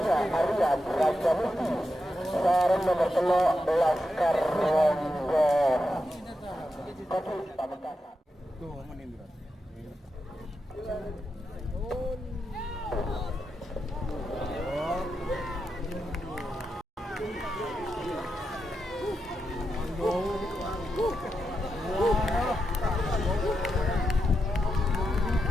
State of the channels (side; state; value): both; normal; correlation 0.86